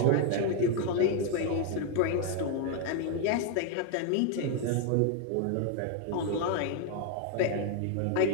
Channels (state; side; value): different; both; correlation 0.01